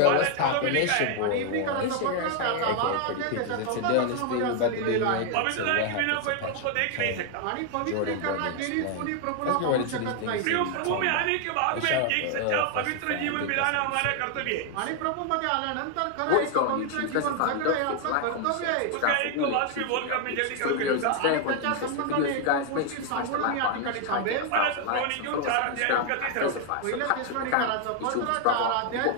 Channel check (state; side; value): different; both; correlation 0.00